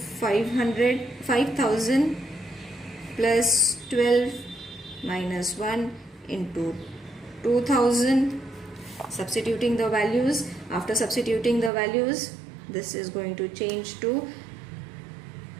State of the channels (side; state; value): left; drops out; at 11.7 s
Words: plus 12 minus 1 into 2,000. Substituting the values. After substituting the values, this is going to change to